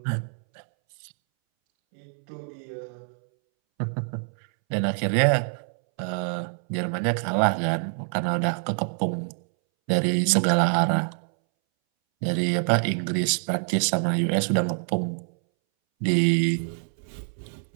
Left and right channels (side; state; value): left; silent; 61 dB below the other